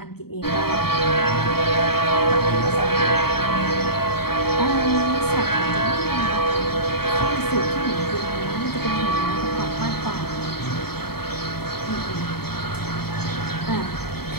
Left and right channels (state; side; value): late; right; 0.95 ms